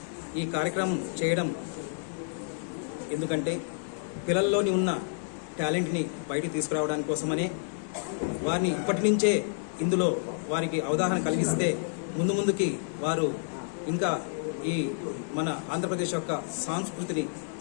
ఈ కార్యక్రమం చేయడం ఎందుకంటే పిల్లల్లోని ఉన్న టాలెంట్ని బయటికి తీసుకురావడానికి కోసమనే, వారిని ఇప్పటి నుంచే ఇందులో వారికి అవగాహన కలిగిస్తే ముందుకి వారు ఇంకా ఈ మన ఆంధ్రప్రదేశ్ యొక్క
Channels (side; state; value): right; silent; digital silence